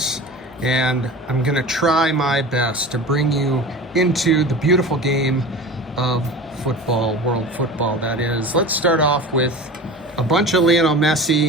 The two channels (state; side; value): normal; both; correlation 0.34